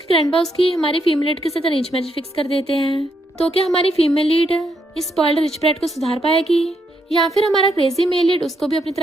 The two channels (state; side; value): normal; both; correlation 0.77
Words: ग्रैंडपा उसकी हमारी फीमेल लीड के साथ अरेंज मैरिज फिक्स कर देते हैं। तो क्या हमारी फीमेल लीड इस स्पॉइल्ड रिच ब्रैट को सुधार पाएगी या फिर हमारा क्रेजी मेल लीड उसको भी अपनी